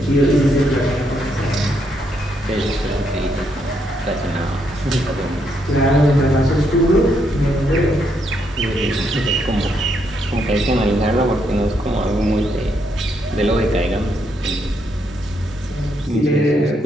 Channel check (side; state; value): both; normal; correlation 0.76